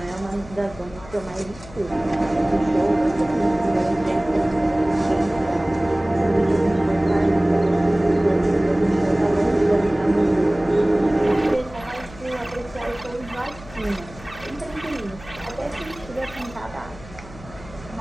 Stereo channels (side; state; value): left; noise; hum, 18 dB below the sound